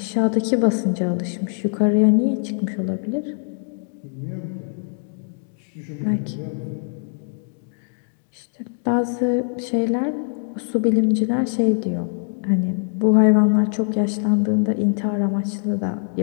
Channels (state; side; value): silent; right; 64 dB below the other